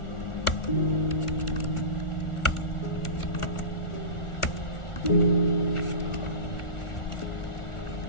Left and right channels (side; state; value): right; late; 1.4 ms